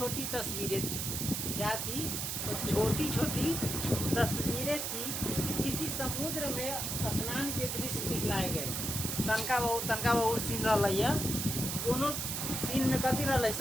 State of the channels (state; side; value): noise; right; hiss, 2 dB below the sound